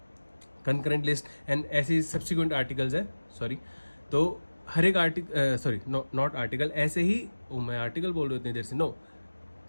concurrent list and ऐसे सब्सिक्वेंट आर्टिकल्स हैं। सॉरी, तो हर एक आर्टिकल, सॉरी नॉट आर्टिकल, ऐसे ही मैं आर्टिकल बोल रहा हूँ इतनी देर से, no,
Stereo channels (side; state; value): both; inverted; correlation -1.00